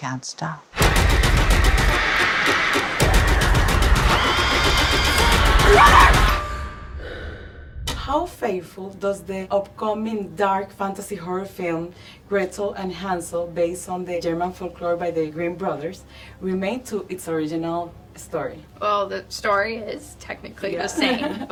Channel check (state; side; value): identical; both; correlation 1.00